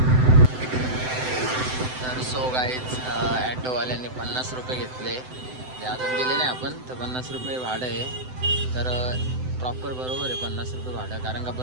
तर सो गाईज ॲटोवाल्यांनी 50 रुपये घेतले, जे अजून दिले नाही आपण, तर 50 रुपये भाडं आहे. तर प्रॉपर बरोबर आहे 50 रुपये भाडं, कारण का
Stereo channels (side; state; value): left; late; 7.8 ms